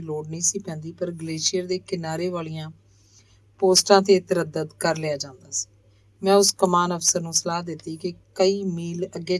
ਲੋੜ ਨਹੀਂ ਸੀ ਪੈਂਦੀ, ਪਰ ਗਲੇਸ਼ੀਅਰ ਦੇ ਕਿਨਾਰੇ ਵਾਲੀਆਂ ਪੋਸਟਾਂ ਤੇ ਤਰੱਦਦ ਕਰ ਲਿਆ ਜਾਂਦਾ ਸੀ। ਮੈਂ ਉਸ ਕਮਾਨ ਅਫਸਰ ਨੂੰ ਸਲਾਹ ਦਿੱਤੀ ਕਿ ਕਈ ਮੀਲ ਅੱਗੇ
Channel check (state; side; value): identical; both; correlation 1.00